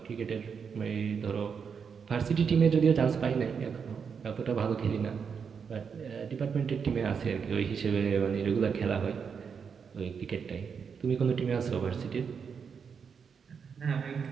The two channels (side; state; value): left; quieter; 6.4 dB